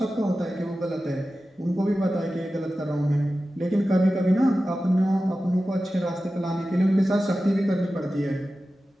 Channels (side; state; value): both; normal; correlation 0.94